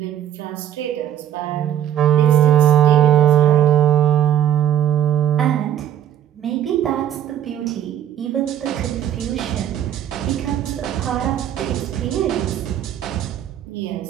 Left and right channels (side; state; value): left; quieter; 10.5 dB